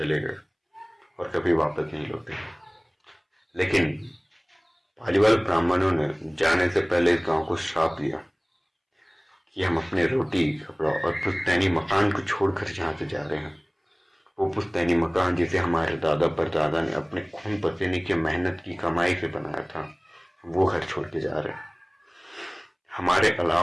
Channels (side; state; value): both; identical; correlation 1.00